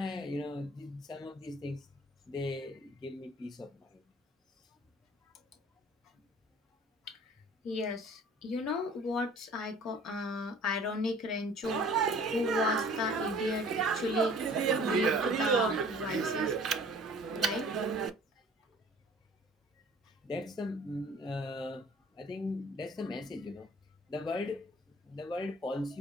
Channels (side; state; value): both; normal; correlation 0.50